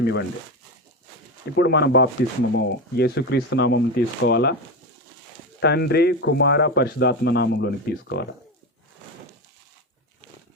ఇవ్వండి. ఇప్పుడు మనం బాప్తిస్మము యేసుక్రీస్తు నామం తీసుకోవాలా, తండ్రి కుమార పరిశుద్ధాత్మ నామంలోనికి తీసుకోవాలి?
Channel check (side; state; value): both; normal; correlation 0.19